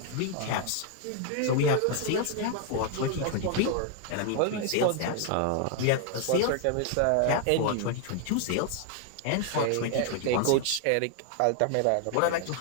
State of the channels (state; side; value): different; both; correlation 0.00